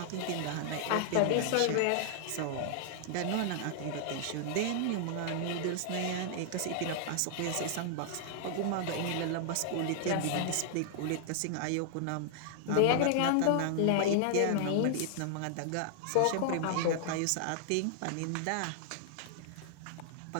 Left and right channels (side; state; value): both; different; correlation -0.01